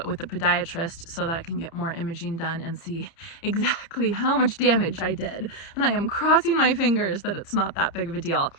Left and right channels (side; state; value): right; late; 30 ms